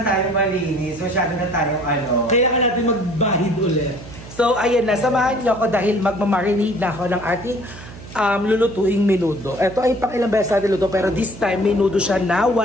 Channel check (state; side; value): noise; right; hum, 16 dB below the sound